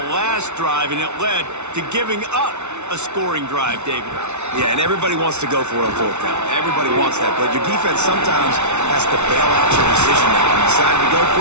last drive, and it led to giving up a scoring drive, David. Yeah, and everybody wants to go for it on 4th down. Everybody wants that, but your defense sometimes has to bail out your decision making. You decided to go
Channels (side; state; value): left; late; 0.82 ms